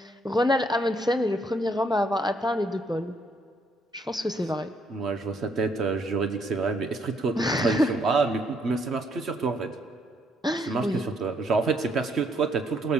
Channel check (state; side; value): normal; both; correlation 0.70